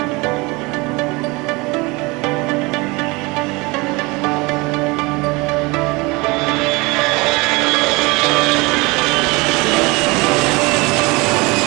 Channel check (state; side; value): quieter; left; 25.0 dB